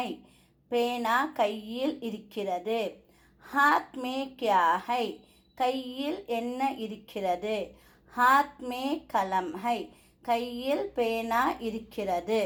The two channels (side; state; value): both; identical; correlation 1.00